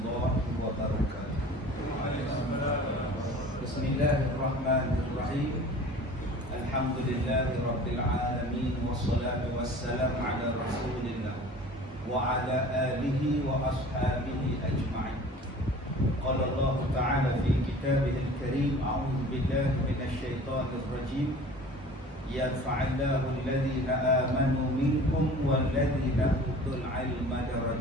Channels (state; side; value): normal; both; correlation 0.43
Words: wabarakatuh. Bismillahirrahmanirrahim. Alhamdulillahi rabbil alamin. Wassalatu wassalamu ala rasulillah wa ala alihi wa ashabihi ajma'in. Qala Allah ta'ala fi kitabihil karim, a'udzu billahi minasy syaithanir rajim. Yarfa'illahu alladhina amanu minkum walladhina utul ilma